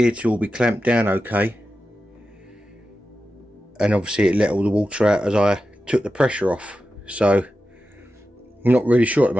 to all be clamped down okay, and obviously it let all the water out as I took the pressure off, so I'm not really sure at the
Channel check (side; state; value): both; normal; correlation 0.92